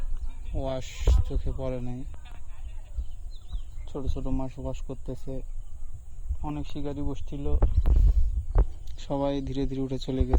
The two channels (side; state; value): both; identical; correlation 1.00